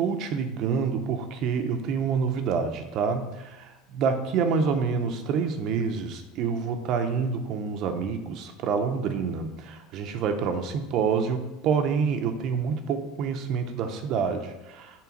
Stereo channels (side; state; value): left; quieter; 5.6 dB